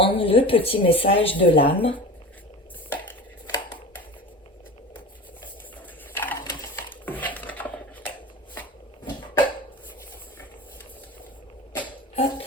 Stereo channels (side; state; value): both; normal; correlation 0.33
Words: le petit message de l'âme. Hop.